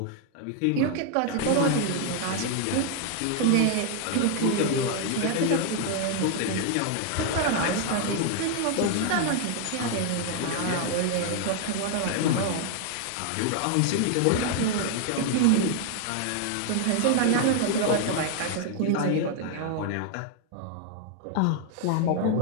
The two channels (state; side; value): different; both; correlation 0.00